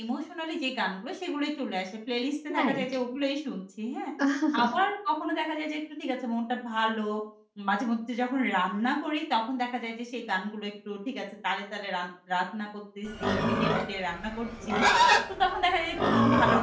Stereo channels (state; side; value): identical; both; correlation 1.00